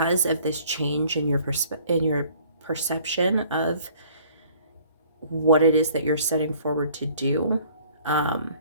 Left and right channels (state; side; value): inverted; both; correlation -0.55